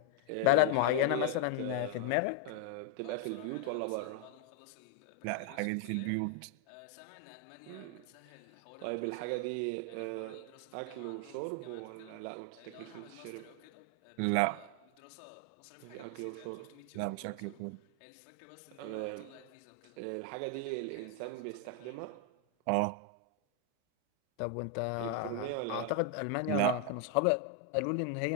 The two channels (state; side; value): different; both; correlation 0.00